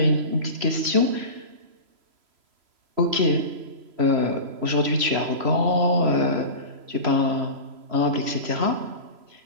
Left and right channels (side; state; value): left; late; 3.0 ms